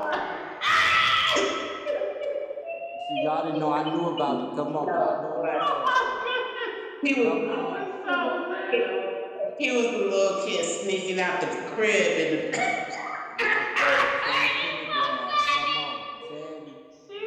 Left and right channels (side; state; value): both; identical; correlation 1.00